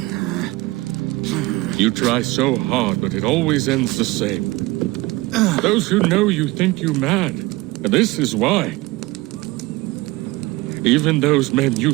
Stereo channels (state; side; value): quieter; left; 20.8 dB